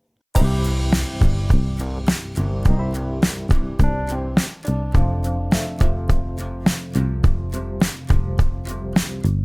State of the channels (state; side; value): identical; both; correlation 1.00